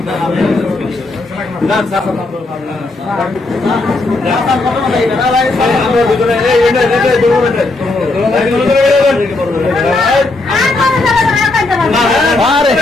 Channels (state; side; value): quieter; right; 3.1 dB